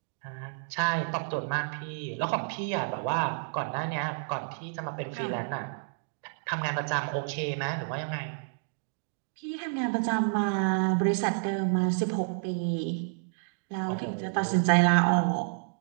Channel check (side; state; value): left; silent; digital silence